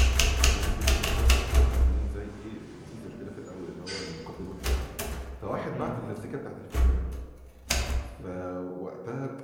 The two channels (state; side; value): identical; both; correlation 1.00